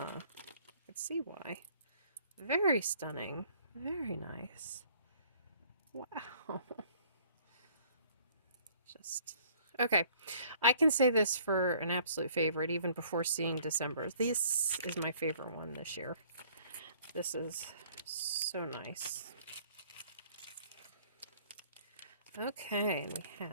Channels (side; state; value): both; inverted; correlation -0.57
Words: I can see why. Very stunning. Very nice. Wow. Just okay. I can say this for an absolute favorite even before seeing December. This is my favorite one this year. This is so nice. Okay, and we